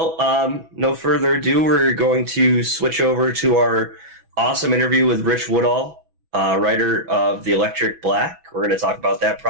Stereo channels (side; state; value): left; late; 6.1 ms